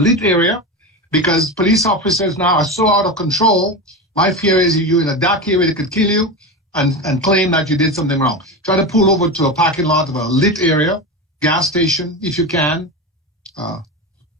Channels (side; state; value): both; normal; correlation 0.21